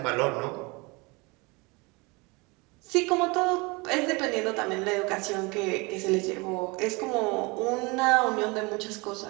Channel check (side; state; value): left; quieter; 26.8 dB